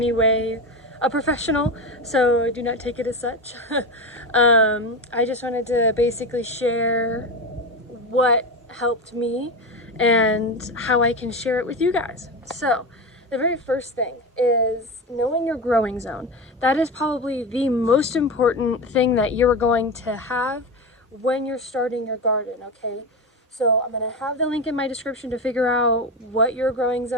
way a professional, so do not take it as such. I just wanted to basically share what helped me and how I can share it with you guys. So the very first thing is knowing your growing zone. That is probably the most important thing that you're going to have when you're starting your garden, okay? So I'm going to have the link in my description to figure out what your growing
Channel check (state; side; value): normal; both; correlation 0.20